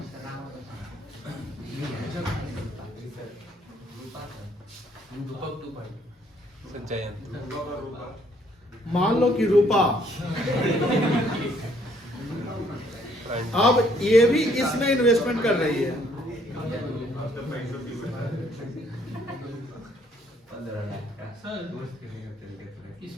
मान लो कि रूपा, अब ये भी इसमें इन्वेस्टमेंट कर रही है।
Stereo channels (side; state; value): both; normal; correlation 0.65